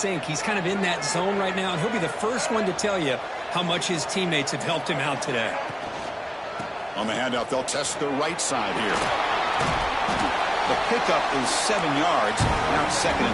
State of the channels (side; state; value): both; identical; correlation 1.00